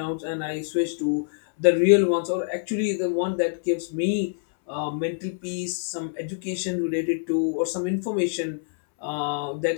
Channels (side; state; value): right; silent; 61 dB below the other